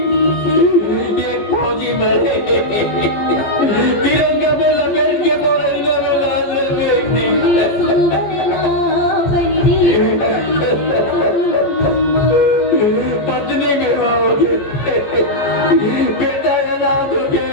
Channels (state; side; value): late; right; 15 ms